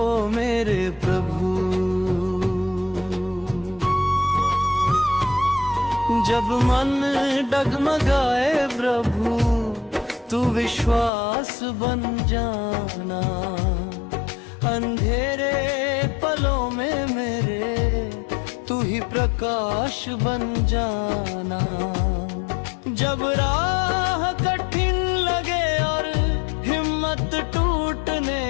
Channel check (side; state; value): right; drops out; at 11.1 s